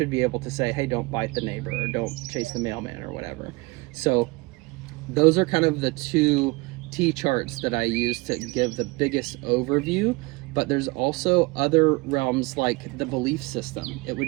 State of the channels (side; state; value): left; quieter; 24.9 dB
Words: be able to say, hey, don't bite the neighbor, or don't chase the mailman, or whatever. So those are kind of the two T-charts that I use to give the biggest overview. But there's also other realms like the belief system. It